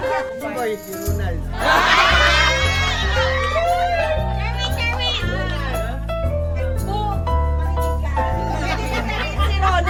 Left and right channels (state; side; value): identical; both; correlation 1.00